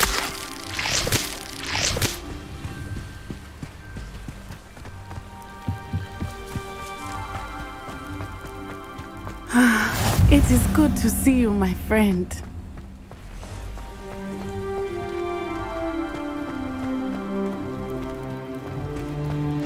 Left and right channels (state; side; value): identical; both; correlation 1.00